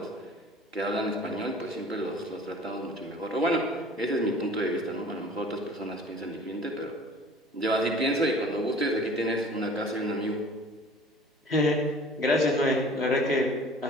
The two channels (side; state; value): both; normal; correlation 0.47